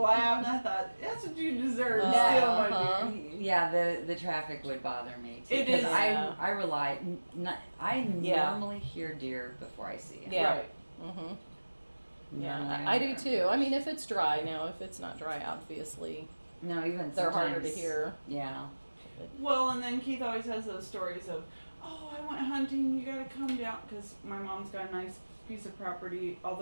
and I thought, that's what you deserve. Steal my deer. Yeah, the traffic would bother me too. It is. I rely. I normally hear deer before I see them. Yeah. Right. Yeah, I do too. I mean, if it's dry now, if it's not dry, obviously. No, even they're harder to sometimes- hear. Yeah. Well, and then Keith always has those stories of, oh, I went hunting, you gotta come down, because my mom's got a nice piece of property,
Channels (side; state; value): both; inverted; correlation -1.00